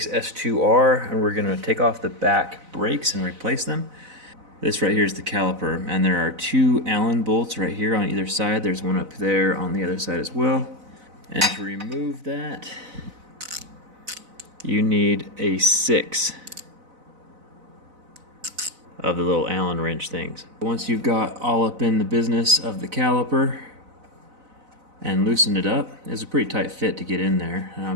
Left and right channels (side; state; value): left; late; 4.0 ms